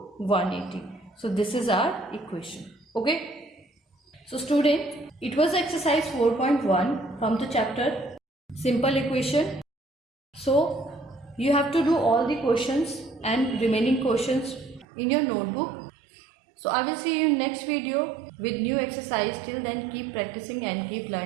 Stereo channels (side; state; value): left; drops out; at 14.9 s